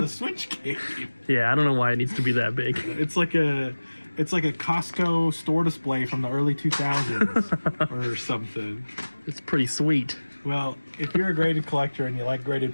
Switch game. Yeah, I don't know why it needs to be that big. It's like a Costco store display from the early 2000s or something. It's pretty sweet. Well, if you're a graded collector and you like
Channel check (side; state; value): both; inverted; correlation -1.00